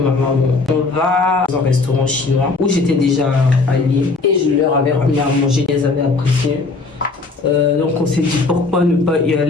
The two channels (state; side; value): quieter; right; 3.8 dB